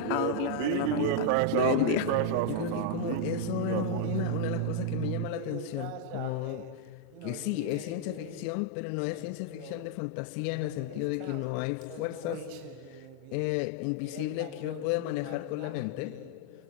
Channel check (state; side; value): different; both; correlation 0.00